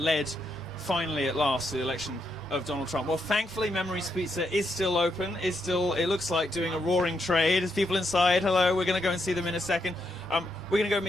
finally, at last, to the election of Donald Trump. Well, thankfully, Memories Pizza is still open. It looks like doing a roaring trade. There's people inside. Hello, we're going to go and see them in a second. We're going to go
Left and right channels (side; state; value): both; normal; correlation 0.80